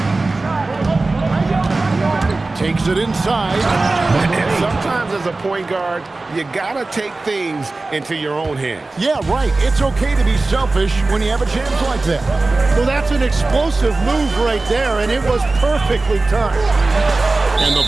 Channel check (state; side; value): quieter; left; 3.3 dB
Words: Takes it inside. And sometimes as a point guard, you gotta take things into your own hands. Yeah, right. It's okay to be selfish when you have a chance like that. Well, that's an explosive move right there, and it was perfectly timed. And the